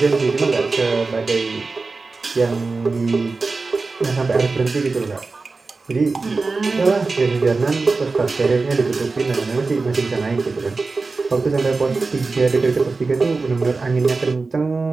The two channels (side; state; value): left; quieter; 3.9 dB